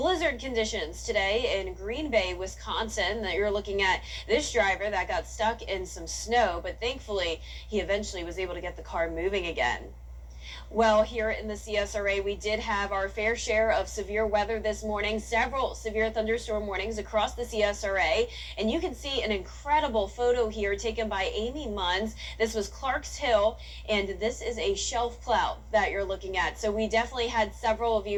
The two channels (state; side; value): identical; both; correlation 1.00